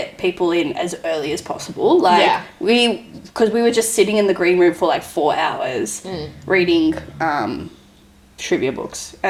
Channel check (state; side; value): identical; both; correlation 1.00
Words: people in as early as possible. Like because we were just sitting in the green room for like 4 hours reading trivia books